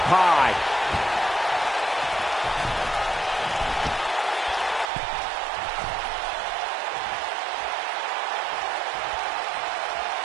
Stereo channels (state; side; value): drops out; left; at 4.9 s